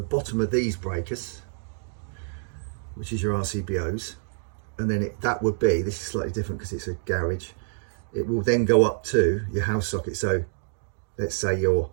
bottom of these breakers, which is your RCBOs, and then that would be, this is slightly different because it's a garage, it will then go up to your house socket. So let's say your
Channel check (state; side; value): silent; left; digital silence